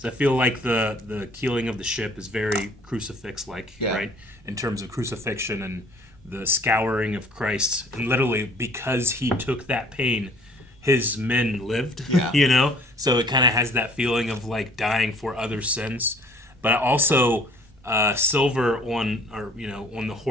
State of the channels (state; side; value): normal; both; correlation 0.55